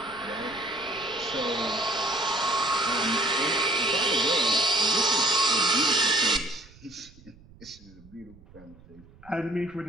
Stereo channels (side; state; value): right; noise; rumble, 24 dB below the sound